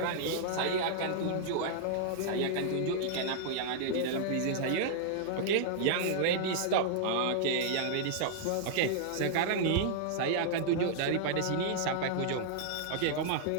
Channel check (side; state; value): both; different; correlation -0.01